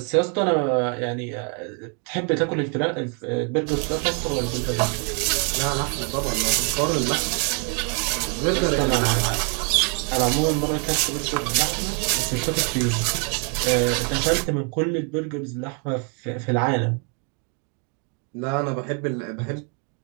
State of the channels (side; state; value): left; quieter; 38.6 dB